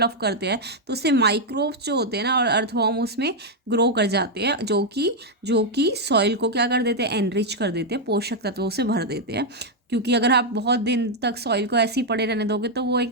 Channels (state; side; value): normal; both; correlation -0.01